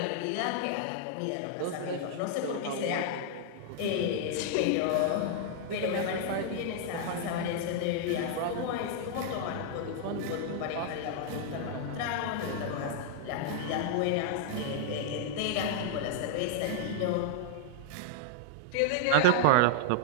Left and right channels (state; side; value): different; both; correlation -0.01